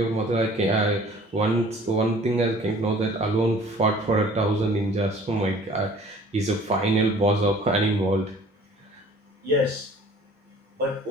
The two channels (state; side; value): normal; both; correlation 0.51